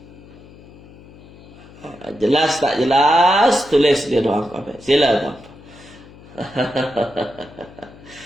Jelas tak jelas? Tulis di ruang komen. Sila tuan-puan.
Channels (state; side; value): noise; left; hum, 21 dB below the sound